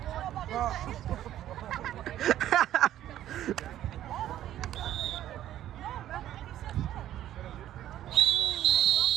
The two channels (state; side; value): quieter; left; 12.4 dB